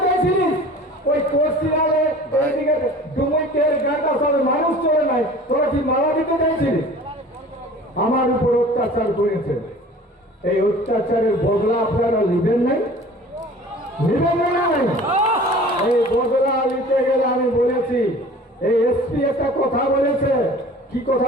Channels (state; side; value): normal; both; correlation 0.44